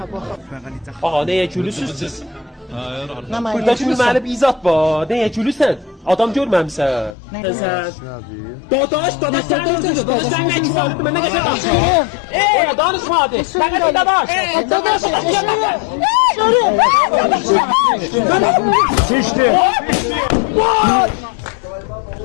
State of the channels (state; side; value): drops out; right; at 7.2 s